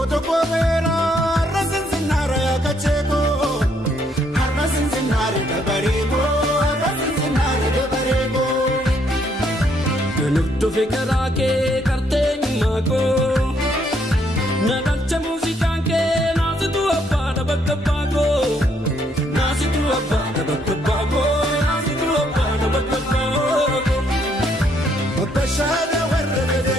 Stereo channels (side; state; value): both; normal; correlation 0.70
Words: Vera rasin zinare akacheko rasin zinare dabarego rasin zinare dabarego Nutto fikra ke karte mako nadalcha musica ke nazitu abba da bakkabago nazitu abba da bakkabago nazitu abba da bakkabago mabashara